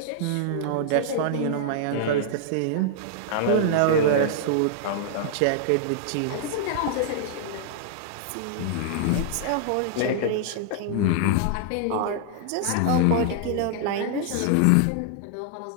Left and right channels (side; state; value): both; different; correlation -0.01